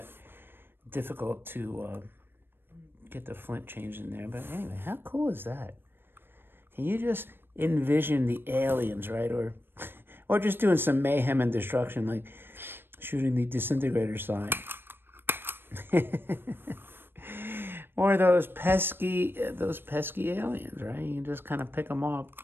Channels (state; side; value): late; left; 0.10 ms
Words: difficult to get the flint changed in there. But anyway, how cool is that? Can you just envision the aliens, right? Or just doing some mayhem and destruction, like shooting the disintegrator sign. Or those pesky aliens, right? You can just kind of pick them off.